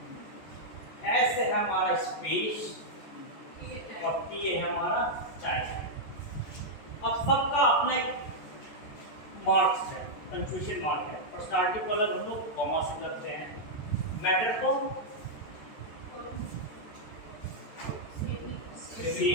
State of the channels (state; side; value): late; right; 14 ms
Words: S है हमारा स्पेस और T है हमारा टाइम। अब सबका अपना एक मार्क्स है, कंफ्यूजन मार्क है। पर्सनालिटी को अलग हम लोग कॉमा से करते हैं, मैटर को